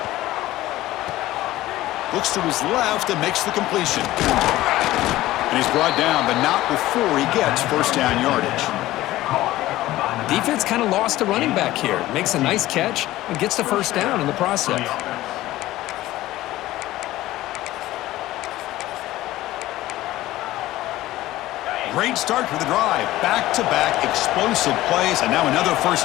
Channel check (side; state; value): right; quieter; 16.2 dB